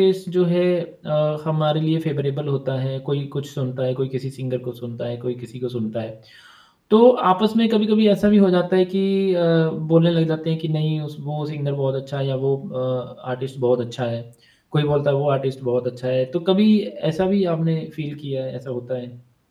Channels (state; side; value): identical; both; correlation 1.00